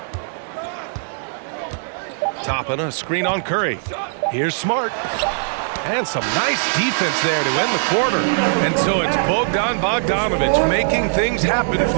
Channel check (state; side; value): silent; left; 64 dB below the other